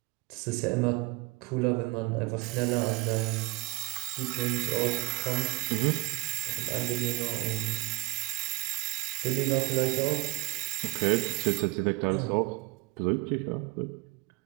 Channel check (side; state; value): left; quieter; 23.4 dB